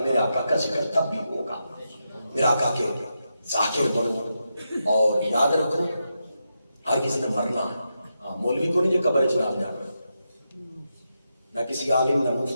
آقا کا ذکر تب بھی ہوگا. میرے آقا کے ذاکر بنو. اور یاد رکھو ہر کسی نے مرنا ہے. مولوی کو نہیں جو قبر چلال جانا، نہ کسی عالم نہ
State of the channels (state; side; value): inverted; both; correlation -0.86